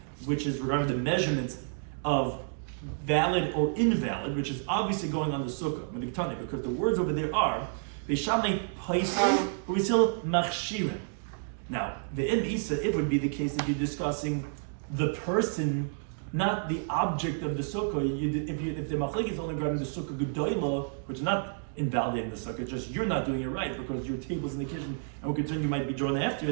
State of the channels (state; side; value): silent; left; digital silence